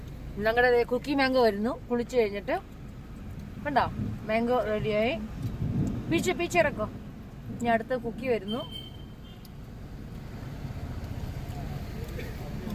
ഞങ്ങളുടെ കുക്കി മാംഗോ വരുന്നു. കുളിച്ചു കഴിഞ്ഞിട്ട് കണ്ടോ, മാംഗോ റെഡിയായി. പീച്ചിറക്കോ. ഇനി അടുത്ത കുക്കി വരുന്നു.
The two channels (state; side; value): identical; both; correlation 1.00